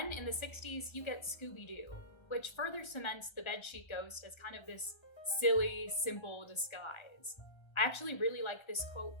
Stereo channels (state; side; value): late; right; 1.3 ms